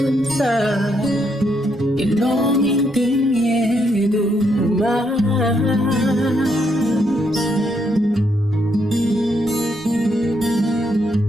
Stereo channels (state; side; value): normal; both; correlation 0.77